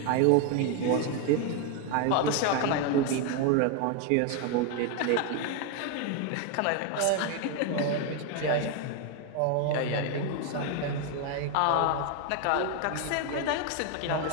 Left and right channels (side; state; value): both; different; correlation 0.01